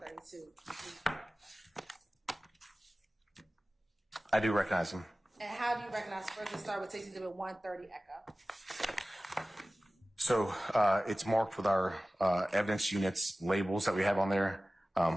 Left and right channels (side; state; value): both; normal; correlation 0.97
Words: I do recognize him. And how do you recognize? First, let's start with Texas Exhibit 130, echo. So it's marked with our evidence units labels that we have on there.